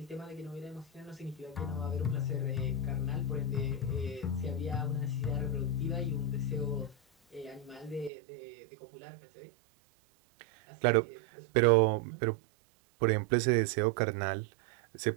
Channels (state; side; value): drops out; left; at 8.1 s